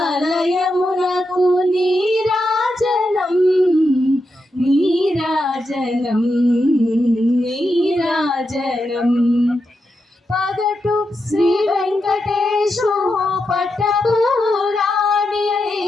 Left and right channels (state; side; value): normal; both; correlation 0.86